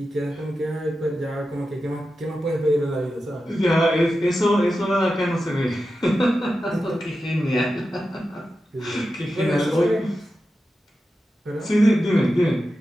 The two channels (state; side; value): normal; both; correlation 0.91